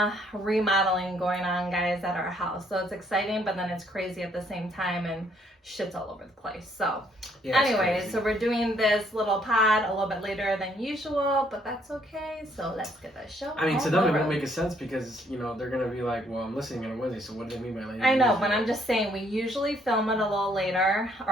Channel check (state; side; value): normal; both; correlation 0.67